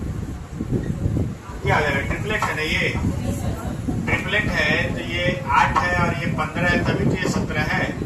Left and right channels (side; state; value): both; identical; correlation 1.00